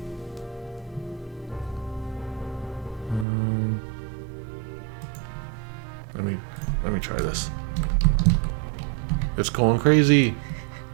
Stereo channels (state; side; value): drops out; left; at 3.2 s